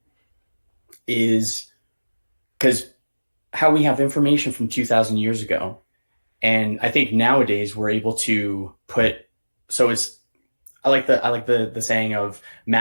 is because how we have information from 2000 years ago. And I think nowadays we're able to I like the saying of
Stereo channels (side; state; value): both; inverted; correlation -1.00